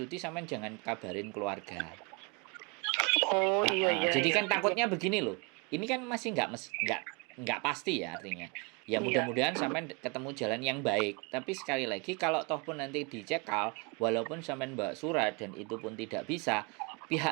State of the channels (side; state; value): left; quieter; 30.6 dB